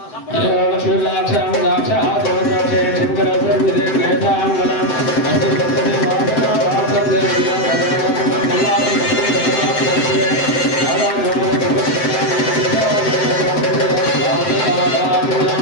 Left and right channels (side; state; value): right; late; 7.8 ms